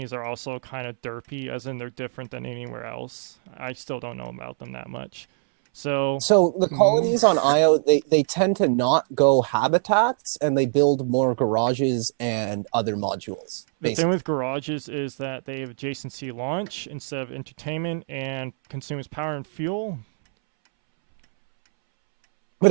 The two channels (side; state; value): left; silent; 63 dB below the other